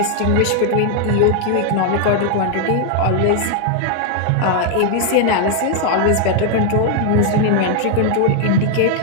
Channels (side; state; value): both; different; correlation 0.00